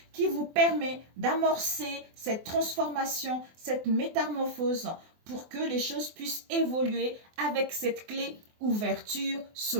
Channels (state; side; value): late; left; 24 ms